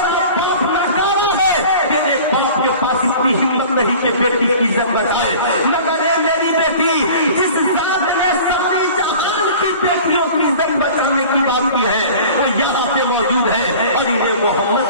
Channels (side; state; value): both; inverted; correlation -0.42